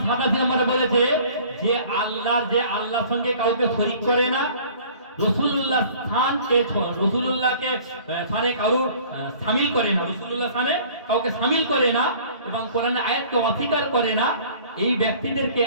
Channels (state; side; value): inverted; both; correlation -0.50